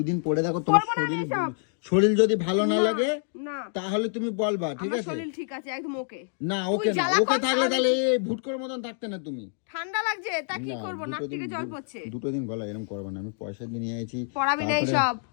দিন পরে দেখো, তোমার করবো না আমি এসব। শরীর যদি ভালো না লাগে না, তাহলে তুমি বলবা, ঠিক আমার আছে? শরীর ঠিক আছে একদম ওকে। না, তুই ওকে না, জ্বালা ওকে কর, থাকলে সারাদিন তাহলে এই ভুটকোর মতন থাকতে না তুমি। ঠান্ডা লাগছে তা কি না, করবো, নাক 2 থেকে দিন, জল পড়ছে। 2 দিন গলা এরকম করবে না, আমি পয়সা দিয়ে নিয়ে আইছি। পড়াবি না তারপরে এইসব।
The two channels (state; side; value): silent; right; digital silence